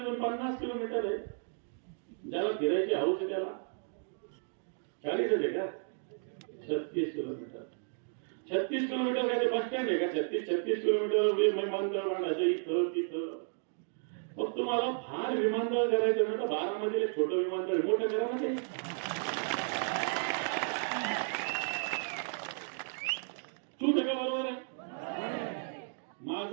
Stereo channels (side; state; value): left; silent; 55 dB below the other